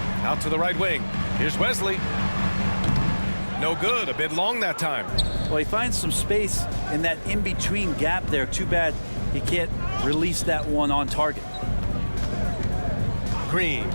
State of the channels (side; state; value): both; inverted; correlation -1.00